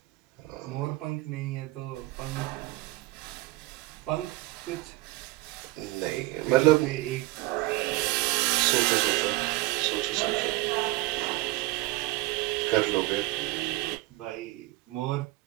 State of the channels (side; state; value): left; quieter; 19.8 dB